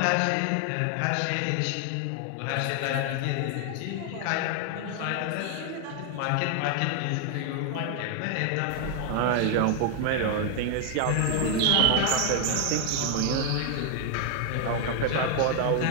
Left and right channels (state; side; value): different; both; correlation 0.00